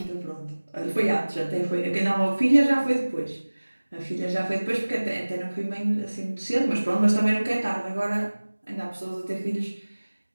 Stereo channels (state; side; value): inverted; both; correlation -1.00